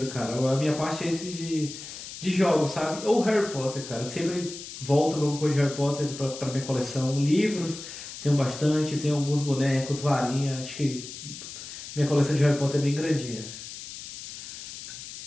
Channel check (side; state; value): left; noise; hiss, 11 dB below the sound